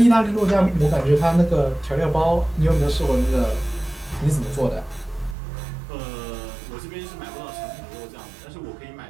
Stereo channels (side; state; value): left; drops out; at 5.4 s